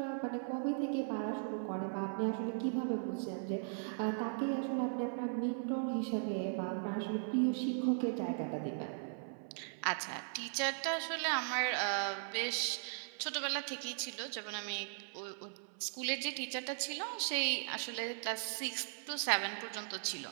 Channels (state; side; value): silent; left; 52 dB below the other